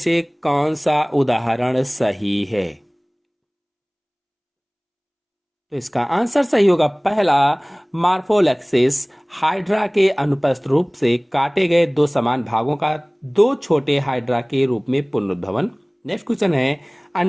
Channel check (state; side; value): identical; both; correlation 1.00